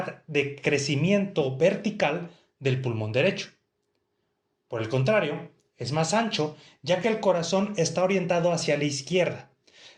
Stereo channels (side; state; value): both; identical; correlation 1.00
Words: de crecimiento vertical del pulmón derecho. Por el contrario, es más ancho ya que el corazón está orientado hacia la izquierda,